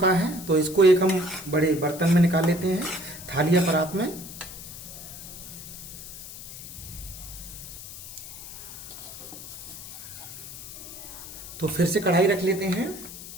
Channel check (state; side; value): noise; left; hiss, 12 dB below the sound